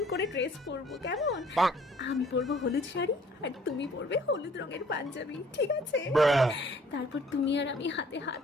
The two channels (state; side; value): normal; both; correlation 0.57